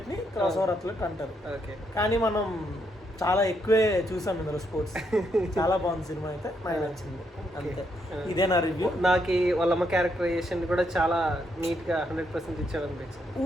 ని క్రాస్ ఓవర్ అథ్లెట్ అంటారు. కానీ మనం చాలా ఎక్కువే చూసాం ఇందులో స్పోర్ట్స్. చాలా బాగుంది సినిమా అయితే, నాకు నచ్చింది అంతే. ఇదే నా రివ్యూ. నాకు వాళ్ళమ్మ క్యారెక్టరైజేషన్ కూడా చాలా నీట్ గా 100% ఇచ్చాడు అనిపించింది.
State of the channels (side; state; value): both; normal; correlation 0.77